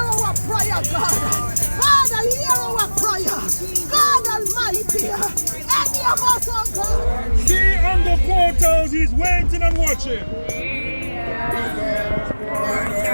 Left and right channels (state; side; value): inverted; both; correlation -1.00